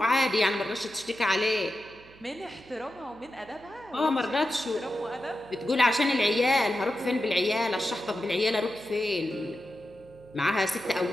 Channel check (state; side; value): noise; right; hum, 24 dB below the sound